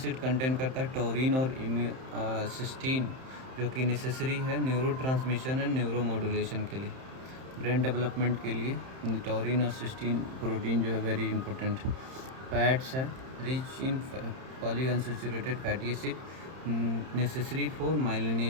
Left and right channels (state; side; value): late; left; 31 ms